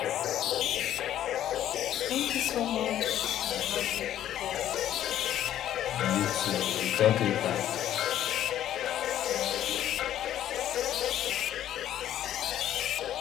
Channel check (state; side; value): quieter; right; 11.7 dB